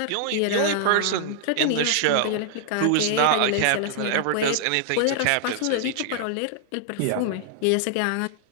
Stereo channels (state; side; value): different; both; correlation 0.00